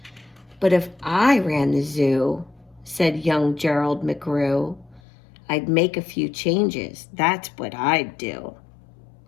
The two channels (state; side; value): drops out; right; at 5.0 s